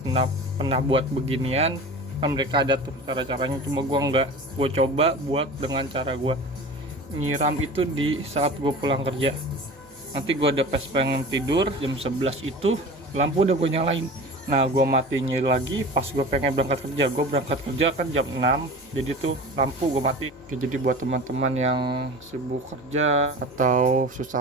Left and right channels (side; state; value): both; normal; correlation 0.36